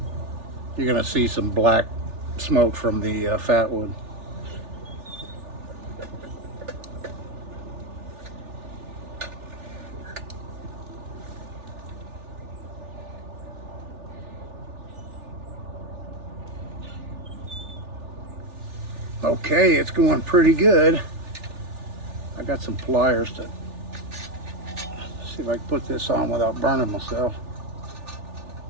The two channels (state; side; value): late; left; 3.4 ms